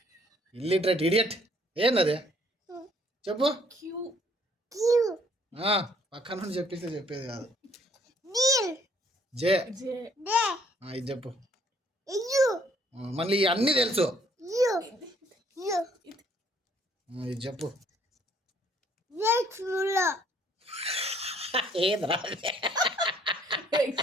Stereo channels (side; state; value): both; normal; correlation 0.63